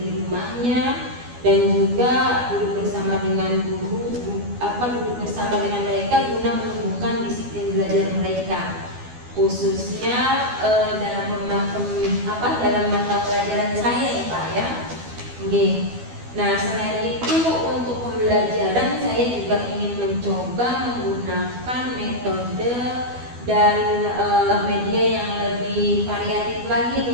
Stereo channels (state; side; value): late; left; 12 ms